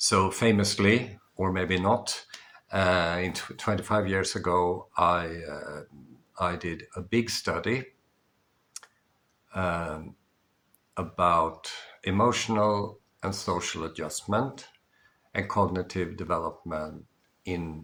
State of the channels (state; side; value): identical; both; correlation 1.00